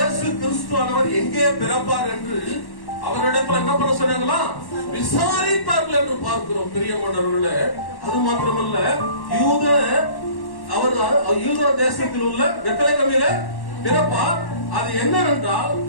கிறிஸ்துவானவர் எங்கே பிறப்பார் என்று அவரிடத்துல என்ன பண்ண சொன்னாங்களா? விசாரித்தார்கள் என்று பார்க்கிறோம். பிரியமானவர்களே, அது மாத்திரமல்ல, யூதா தேசத்தில் உள்ள பெத்லகேமிலே பிறப்பார். அது என்னவென்றால்,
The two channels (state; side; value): late; right; 1.1 ms